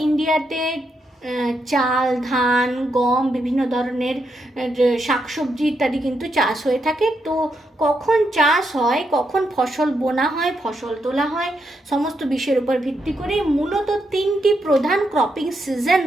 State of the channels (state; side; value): normal; both; correlation 0.81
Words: ইন্ডিয়াতে চাল, ধান, গম, বিভিন্ন ধরনের শাকসবজি ইত্যাদি কিন্তু চাষ হয়ে থাকে। তো কখন চাষ হয়, কখন ফসল বোনা হয়, ফসল তোলা হয়, সমস্ত বিষয়ের উপর ভিত্তি করে মূলত তিনটি প্রধান ক্রপিং সিজন